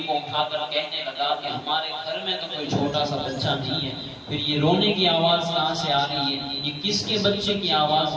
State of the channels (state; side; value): identical; both; correlation 1.00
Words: کو اٹھا کر کہنے لگا کہ ہمارے گھر میں تو کوئی چھوٹا سا بچہ نہیں ہے، پھر یہ رونے کی آواز کہاں سے آ رہی ہے؟ یہ کس کے بچے کی آواز